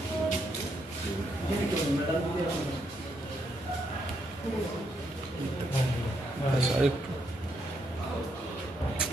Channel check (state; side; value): normal; both; correlation 0.77